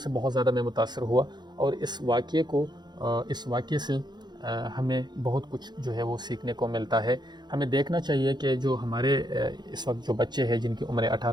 بہت زیادہ میں متاثر ہوا، اور اس واقعے سے ہمیں بہت کچھ جو ہے وہ سیکھنے کو ملتا ہے۔ ہمیں دیکھنا چاہیے کہ جو ہمارے اس وقت جو بچے ہیں جن کی عمر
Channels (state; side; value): late; left; 0.21 ms